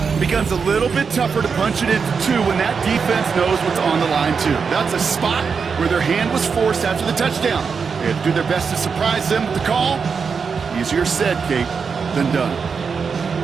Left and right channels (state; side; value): quieter; left; 5.7 dB